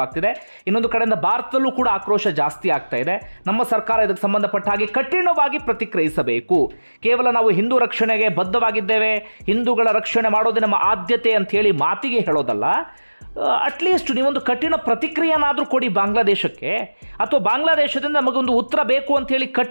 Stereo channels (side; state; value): both; inverted; correlation -1.00